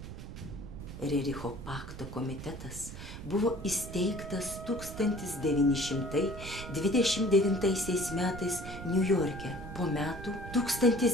Rericho pakto komitetas buvo įsteigtas 1929 metais Niujorke, po metų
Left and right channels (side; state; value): right; noise; rumble, 10 dB below the sound